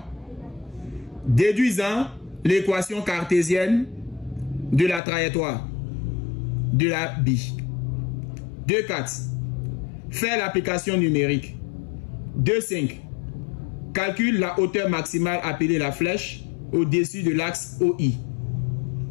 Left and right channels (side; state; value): right; drops out; at 5.0 s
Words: Déduisant l'équation cartésienne de la trajectoire de la bille. 2.4. Fait l'application numérique. 2.5. Calcule la hauteur maximale appelée la flèche au-dessus de l'axe OI.